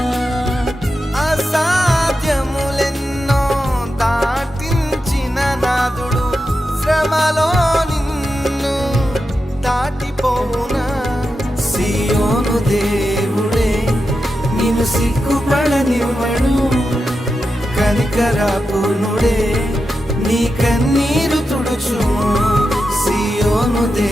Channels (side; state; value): both; normal; correlation 0.89